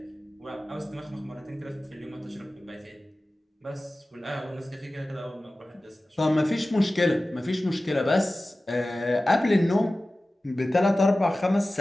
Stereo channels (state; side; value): normal; both; correlation 0.96